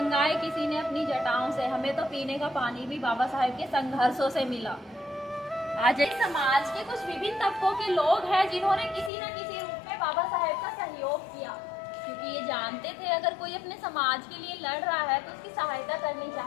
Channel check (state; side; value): drops out; right; at 9.1 s